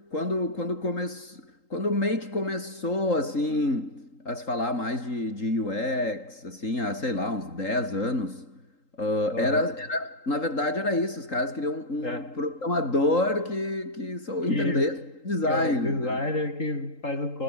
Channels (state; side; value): late; right; 3.8 ms